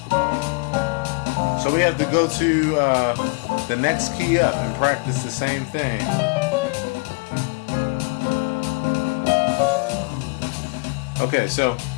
So we have to go to the next key up and practice the same thing. Okay, so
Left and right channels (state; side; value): quieter; right; 30.8 dB